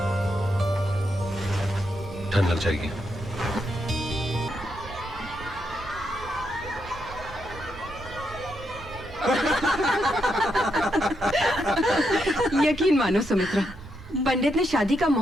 ठंड लग जाएगी। यकीन मानो सुमित्रा, पंडित ने शादी का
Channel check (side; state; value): right; noise; rumble, 16 dB below the sound